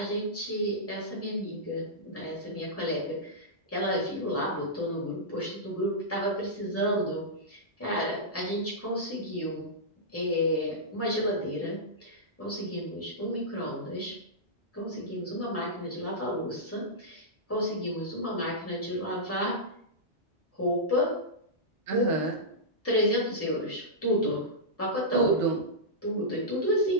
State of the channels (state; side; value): normal; both; correlation -0.14